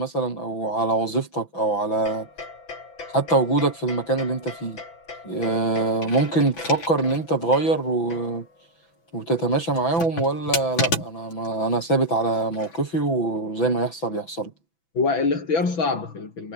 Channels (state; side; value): late; right; 6.0 ms